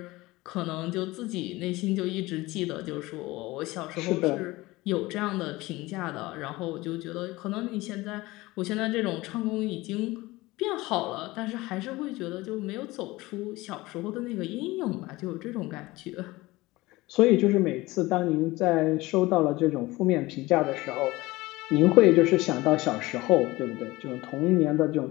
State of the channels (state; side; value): quieter; right; 20.1 dB